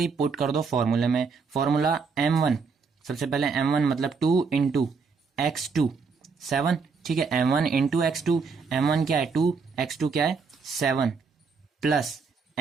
पुट कर दो फॉर्मूले में। फॉर्मूला m1, सबसे पहले m1 मतलब 2 इंटू x2 7, ठीक है, m1 इंटू x2, m1 क्या है 2, x2 क्या है 7, plus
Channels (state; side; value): quieter; left; 5.1 dB